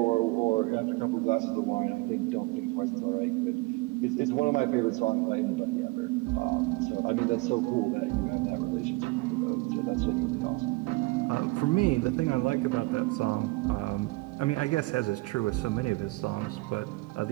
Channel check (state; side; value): quieter; left; 23.5 dB